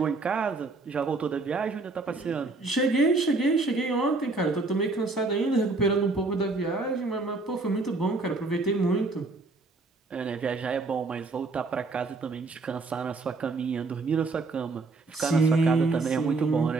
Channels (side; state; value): left; quieter; 3.6 dB